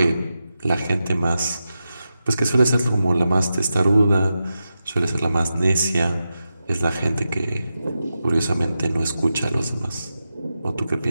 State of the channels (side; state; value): both; inverted; correlation -0.90